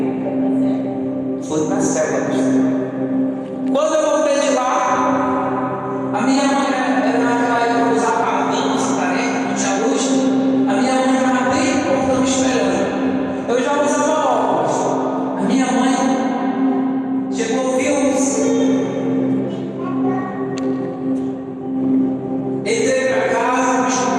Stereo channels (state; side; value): identical; both; correlation 1.00